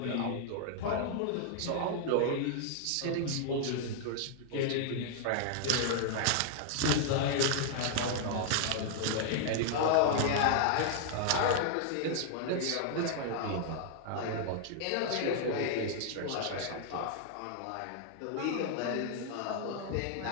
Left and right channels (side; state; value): both; different; correlation -0.01